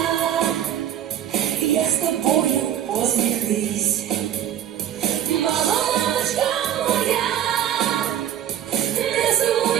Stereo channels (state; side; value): quieter; left; 10.6 dB